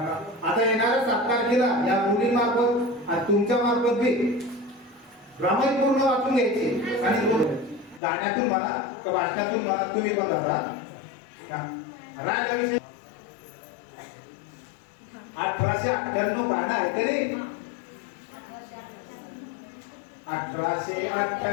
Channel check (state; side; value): drops out; right; at 8.0 s